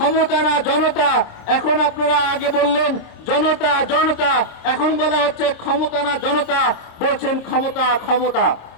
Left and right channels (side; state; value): right; late; 26 ms